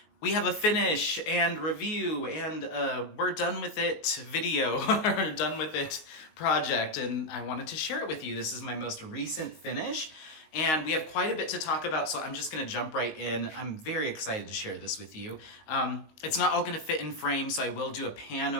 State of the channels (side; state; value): right; late; 19 ms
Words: we have a finish and review and we're done with it video, or done with it project, and I wanted to share it with you. This is my most recent finish and we have quite a bit to talk about, so I'm just going to jump right in. I'm very excited to share this with you. It's not all going to fit in frame, so I will do a pan